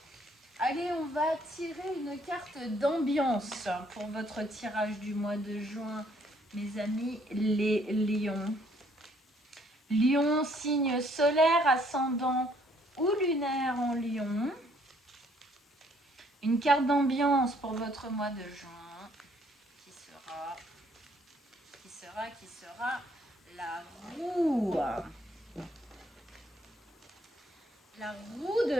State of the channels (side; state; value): both; normal; correlation 0.65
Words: Allez, on va tirer une carte d'ambiance pour votre tirage du mois de juin, mes amis les lions. Lion, signe solaire, ascendant ou lunaire en lion. Une carte d'ambiance pour votre mois de juin qui sera la roue. La roue de